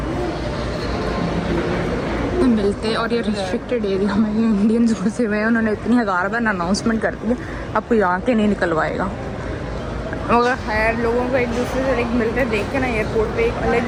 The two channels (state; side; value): identical; both; correlation 1.00